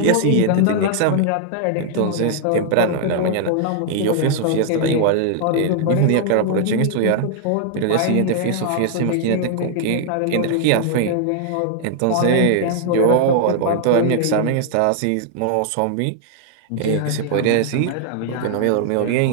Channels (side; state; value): both; different; correlation 0.00